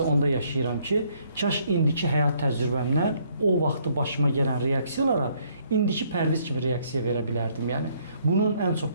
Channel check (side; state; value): both; inverted; correlation -0.67